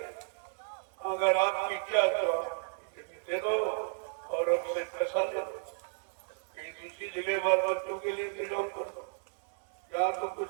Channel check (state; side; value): silent; left; digital silence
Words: अगर आपकी क्या तो आप दे दो और हमसे पैसा ले दो, कहीं दूसरी जगह बाल बच्चों के लिए इंतजाम कर दो। यहाँ तो